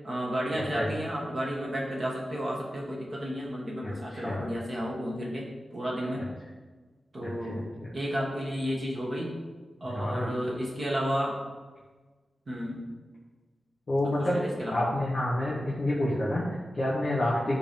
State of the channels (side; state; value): both; normal; correlation 0.93